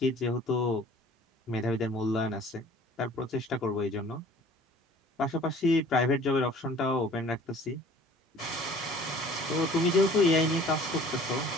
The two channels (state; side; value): normal; both; correlation 0.50